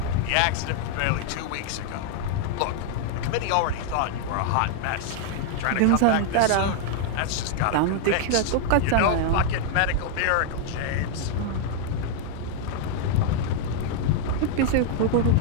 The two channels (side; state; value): both; different; correlation 0.00